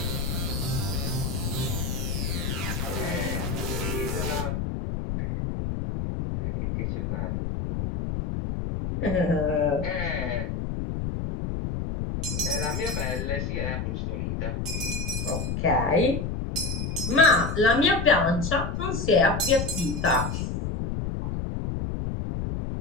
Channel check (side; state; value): left; noise; rumble, 2 dB below the sound